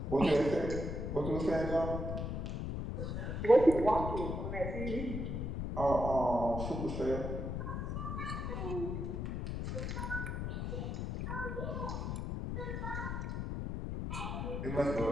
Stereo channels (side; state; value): left; noise; rumble, 3 dB below the sound